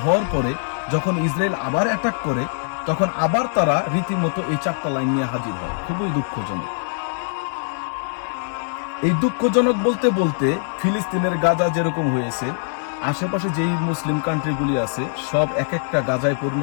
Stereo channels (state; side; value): silent; right; digital silence